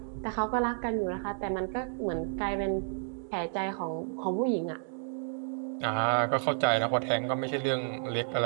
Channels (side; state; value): left; silent; digital silence